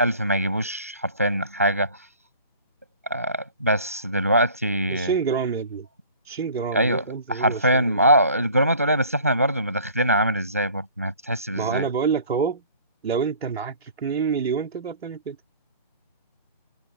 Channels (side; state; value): both; inverted; correlation -0.47